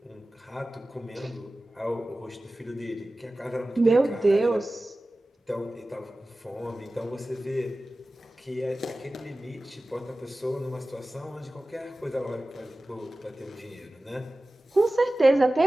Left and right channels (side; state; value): both; normal; correlation 0.96